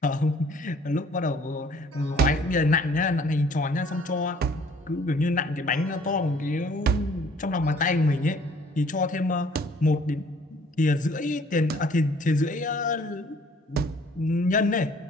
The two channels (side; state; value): both; normal; correlation 0.57